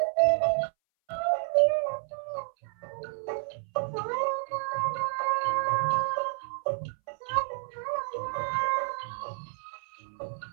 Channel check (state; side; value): silent; left; 58 dB below the other